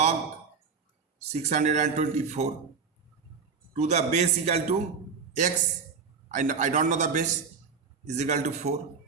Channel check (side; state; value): left; quieter; 5.6 dB